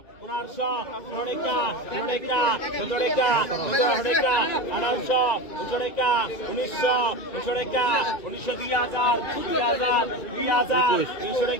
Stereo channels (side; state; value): right; late; 2.4 ms